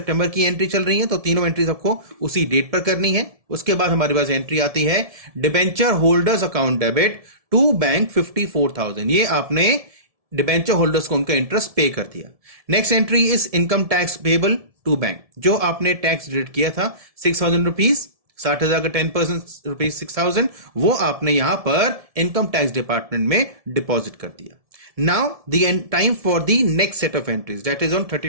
की एंट्री चल रही है, तो तीनों एंट्रीज आपको उसी डेट पर करनी है। उसके बाद हमारे पास एंट्री आती है debenture holders account debit to bank 54,000, ये आपने डिबेंचर होल्डर्स को उनका इंटरेस्ट पे कर दिया। Next entry is income tax payable to bank, जो आपने टैक्स डिडक्ट किया था 6,000 रुपीज, 60,000 का 10% रुपीज 6,000, वो आपने यहां पर इनकम टैक्स डिपार्टमेंट में डिपॉजिट कर दिया। Now the time for the next set of entries, that is on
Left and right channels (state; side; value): late; left; 1.7 ms